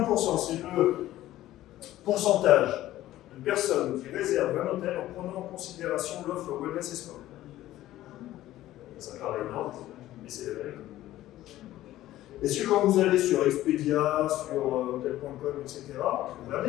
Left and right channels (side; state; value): right; quieter; 14.7 dB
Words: c'est le pourcentage de personnes qui réservent un hôtel en prenant en considération l'offre wellness et sport. Ça paraît énorme, mais c'est la vérité. Est-ce que quand vous allez sur Expedia, sur hotel.com, etc., vous